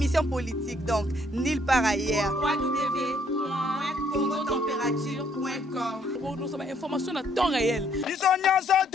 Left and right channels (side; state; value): both; normal; correlation 0.67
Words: politique, donc, nulle part ailleurs. www.congotempérature.com. Pour nous avoir information à temps réel.